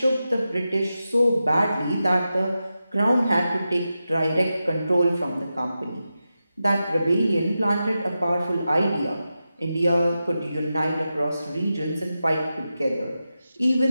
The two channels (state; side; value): inverted; both; correlation -0.91